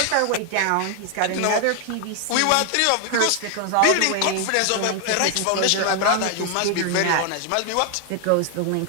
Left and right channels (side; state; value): both; different; correlation 0.00